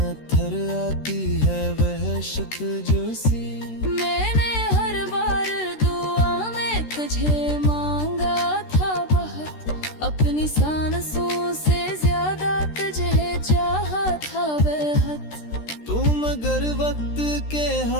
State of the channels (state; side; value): late; right; 13 ms